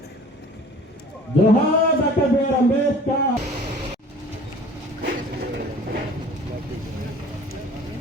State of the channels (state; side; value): normal; both; correlation 0.47